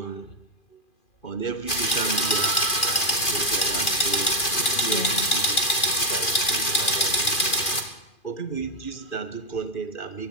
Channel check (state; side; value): late; right; 2.4 ms